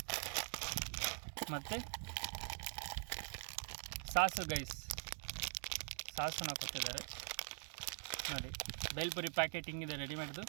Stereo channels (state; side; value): silent; left; digital silence